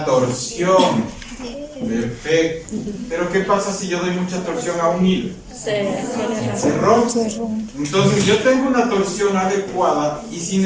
torsión. Perfecto. Pero ¿qué pasa si yo doy mucha torsión a un hilo? Se rompe. Entonces yo tengo una torsión adecuada y si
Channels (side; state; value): both; identical; correlation 1.00